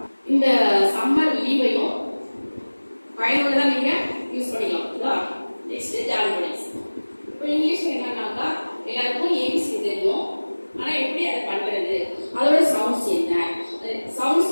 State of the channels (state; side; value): inverted; both; correlation -1.00